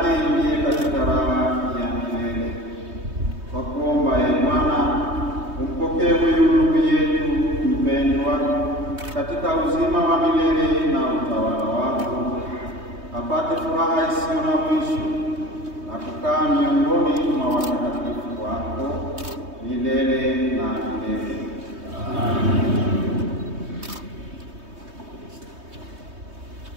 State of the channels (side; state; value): left; late; 3.2 ms